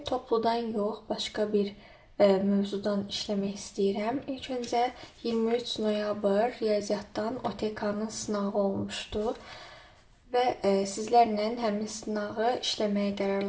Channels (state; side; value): identical; both; correlation 1.00